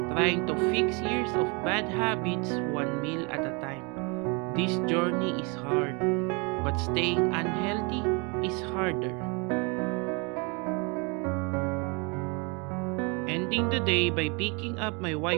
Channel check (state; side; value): quieter; left; 31.4 dB